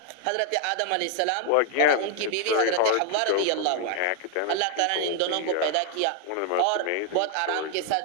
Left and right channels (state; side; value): different; both; correlation 0.00